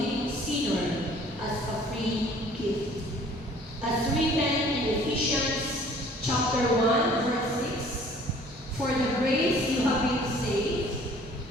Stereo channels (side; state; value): both; normal; correlation 0.53